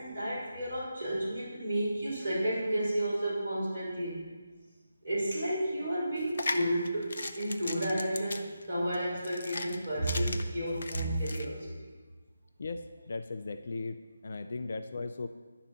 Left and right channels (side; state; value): both; inverted; correlation -0.86